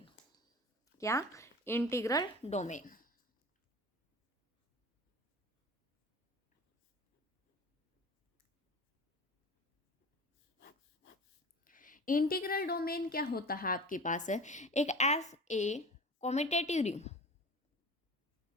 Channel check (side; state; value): both; normal; correlation 0.37